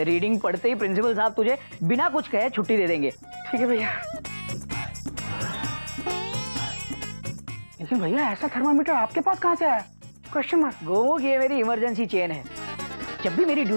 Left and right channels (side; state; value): both; inverted; correlation -1.00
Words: पढ़ते ही प्रिंसिपल साहब तुझे बिना कुछ कहे छुट्टी दे देंगे। ठीक है भैया। लेकिन भैया ऐसा थर्मामीटर आपके पास कहाँ से आया? Question mark. गोमू की ये मेरी इमरजेंसी चेन है। जब भी मेरी